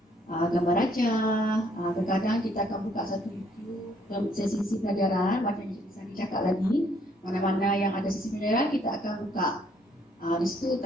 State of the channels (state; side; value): normal; both; correlation 0.66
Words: gambar raja. Kadang-kadang kita akan buka satu YouTube sesi pelajaran macam yang Cikgu Sani cakap lagi, mana-mana yang ada sesi pelajaran kita akan buka di situ,